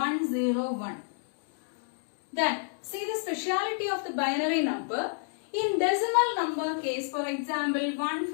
Then see the speciality of the binary number. In decimal number case, for example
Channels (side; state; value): right; silent; digital silence